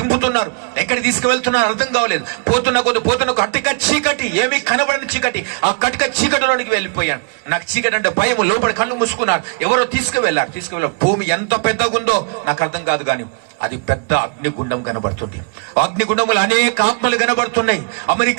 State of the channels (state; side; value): quieter; left; 33.4 dB